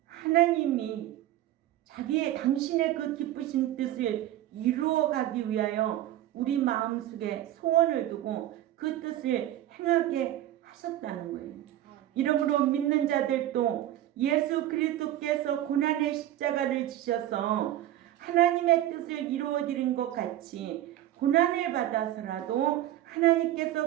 당신의 그 기쁘신 뜻을 이루어가기 위하여 우리 마음속에 소원을 두고 그 뜻을 행하게 하셨다는 거예요. 이러므로 믿는 자들도 예수 그리스도께서 고난의 십자가를 지셔서 하나님의 뜻을 이루어드린 것 같이 고난을 받아서라도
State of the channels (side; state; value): left; quieter; 13.4 dB